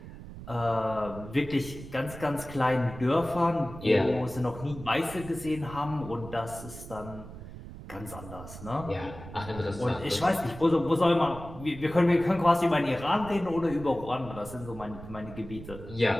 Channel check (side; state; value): right; noise; rumble, 13 dB below the sound